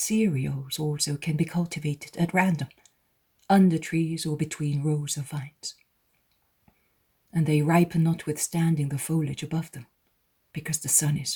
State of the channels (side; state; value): both; identical; correlation 1.00